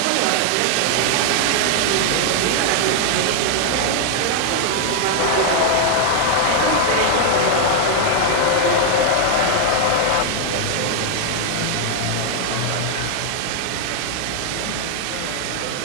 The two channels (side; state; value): both; different; correlation 0.00